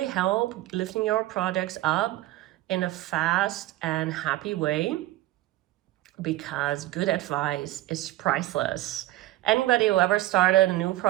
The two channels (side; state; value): left; quieter; 16.3 dB